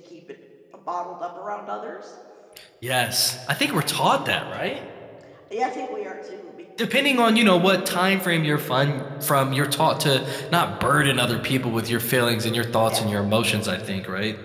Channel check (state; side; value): identical; both; correlation 1.00